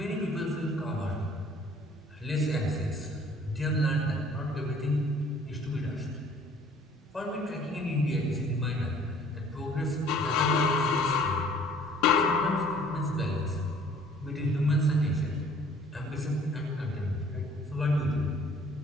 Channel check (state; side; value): normal; both; correlation 0.55